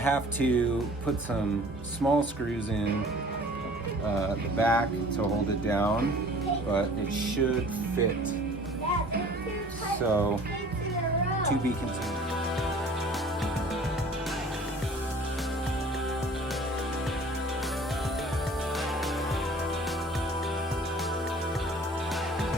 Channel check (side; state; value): both; normal; correlation 0.49